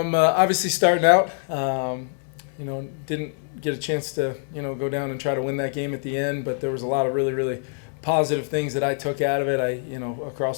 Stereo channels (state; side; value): silent; right; 62 dB below the other